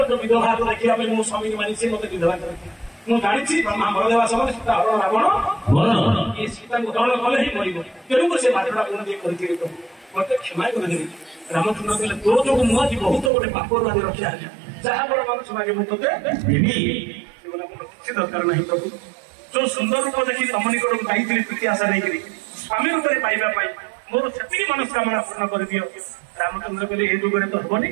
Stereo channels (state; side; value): drops out; left; at 13.3 s